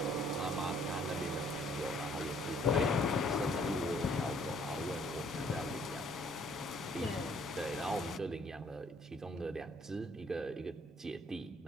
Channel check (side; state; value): both; normal; correlation 0.62